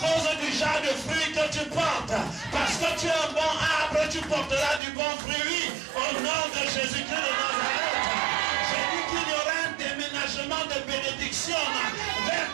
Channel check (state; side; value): drops out; left; at 4.8 s